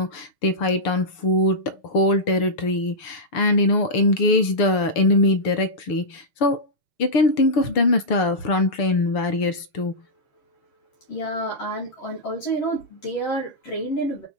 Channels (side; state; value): right; late; 6.8 ms